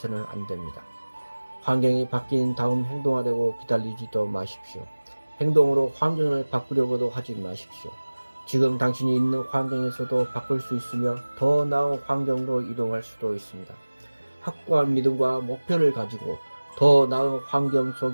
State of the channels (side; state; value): both; inverted; correlation -1.00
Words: 안 됩니다. 환경이 바뀐 다음 행동하려고 기다리지도 마십시오. 행동으로 환경을 바꾸려고도 하지 마십시오. 지금 당신이 있는 환경에서도 바꿀 수 있으며 더 나은 환경으로 이동할 수도 있습니다. 확고한 믿음과 목표를 가지고 더 나은 환경